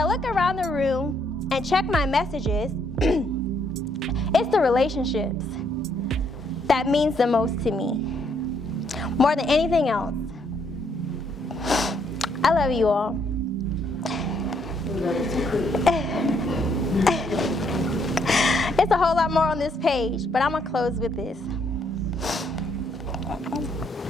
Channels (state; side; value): normal; both; correlation 0.71